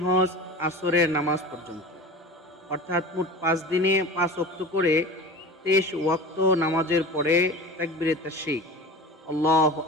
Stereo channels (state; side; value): normal; both; correlation 0.34